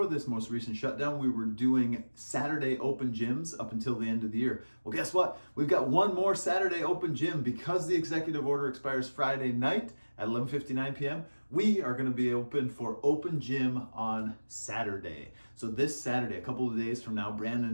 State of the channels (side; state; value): both; inverted; correlation -1.00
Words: this most recent shutdown, we were doing Saturday open gyms up until the end of the year. Well, guess what? We've got one more Saturday open gym because the executive order expires Friday night at 11:59 p.m. We are going to be open for open gym on Saturday. So this Saturday, a couple of days from now,